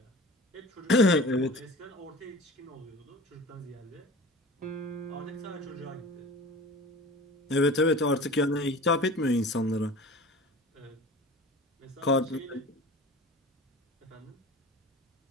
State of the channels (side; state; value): both; normal; correlation 0.38